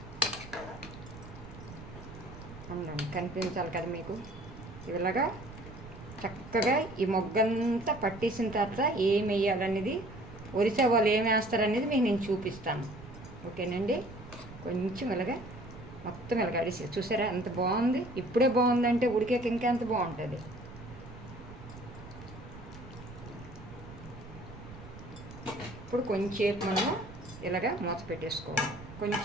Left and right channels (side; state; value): right; noise; rumble, 15 dB below the sound